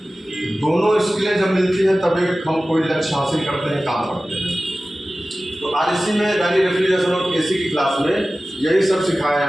दोनों स्किलें जब मिलती हैं तब एक हम कोई लक्ष्य हासिल करते हैं, काम करते हैं। तो आरएसी में यानी रेफ्रिजरेशन और एसी की क्लास में यही सब सिखाया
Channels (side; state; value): both; normal; correlation 0.96